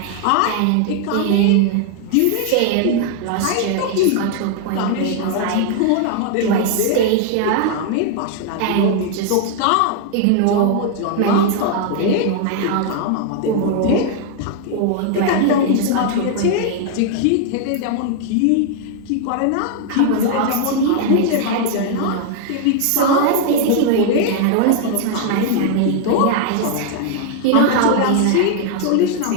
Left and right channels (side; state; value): both; different; correlation 0.00